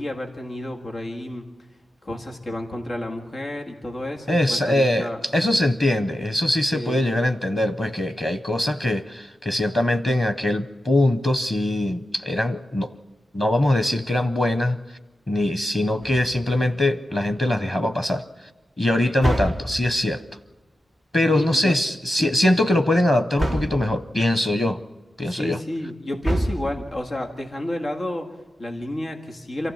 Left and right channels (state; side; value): normal; both; correlation 0.90